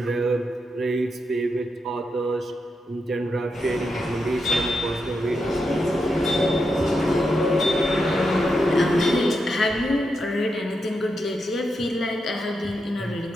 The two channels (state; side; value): normal; both; correlation 0.85